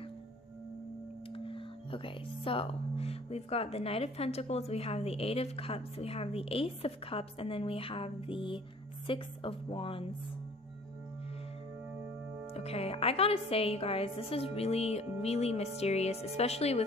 Okay, so we've got the Knight of Pentacles, we have the 8 of Cups, we have the Ace of Cups, and then we have the 6 of Wands. Okay, I gotta say, you guys, this is really, really mysterious, especially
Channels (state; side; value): normal; both; correlation 0.52